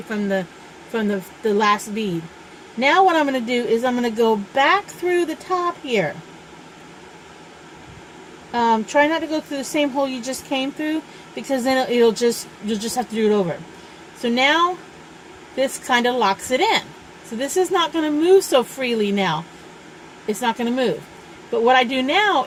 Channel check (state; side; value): identical; both; correlation 1.00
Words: from the last bead. Now what I'm going to do is I'm going to go back through the top here. Try not to go through the same hole you just came through, because then you'll just have to do it over. So now this kind of locks it in. So this is not going to move so freely now. It's not going to move. But what I do now